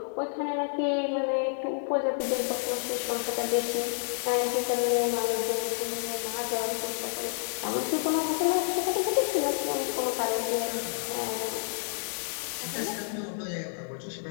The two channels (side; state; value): right; silent; digital silence